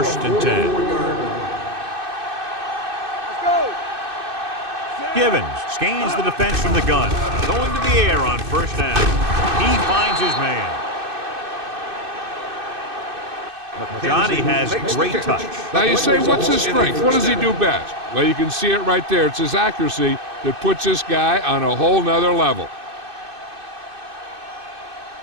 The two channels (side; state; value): left; late; 2.6 ms